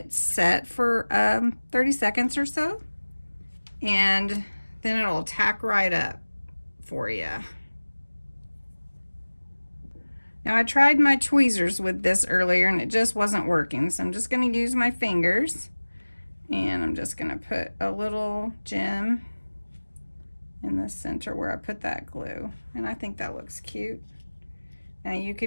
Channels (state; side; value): inverted; both; correlation -1.00